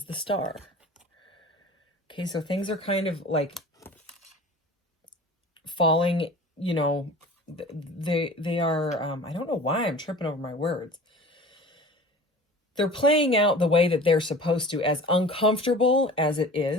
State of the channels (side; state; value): both; normal; correlation 0.40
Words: the star. Okay, so things are kind of like falling, you know, they are, I don't know why I'm tripping over my words. They're playing out the way that they're supposed to, as uncomfortable as it